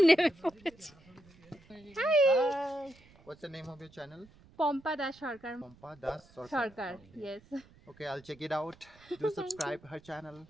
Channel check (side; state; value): right; noise; rumble, 26 dB below the sound